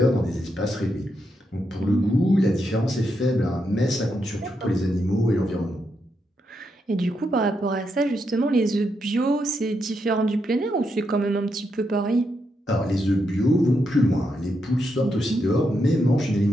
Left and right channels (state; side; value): normal; both; correlation 0.82